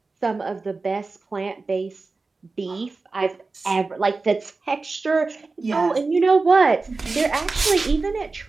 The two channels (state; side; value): quieter; left; 3.8 dB